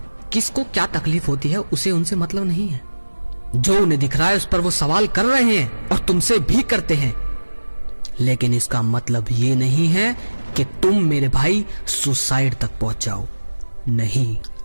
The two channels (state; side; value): inverted; both; correlation -1.00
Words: किसको क्या तकलीफ होती है उसे उनसे मतलब नहीं है। जो उन्हें दिख रहा है उस पर वो सवाल कर रहे हैं, और तुमसे भी करते हैं, लेकिन इसका मतलब ये नहीं है कि तुम मेरे भाई सुसाइड तक पहुंच जाओ। नहीं,